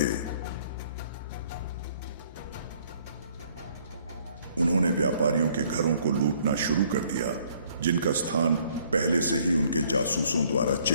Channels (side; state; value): both; inverted; correlation -0.62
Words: उन्होंने व्यापारियों के घरों को लूटना शुरू कर दिया, जिनका स्थान पहले से ही उनके जासूसों द्वारा